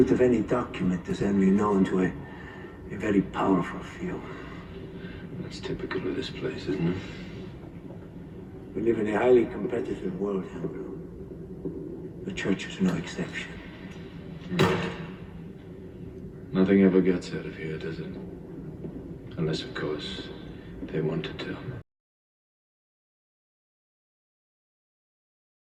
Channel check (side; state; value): both; identical; correlation 1.00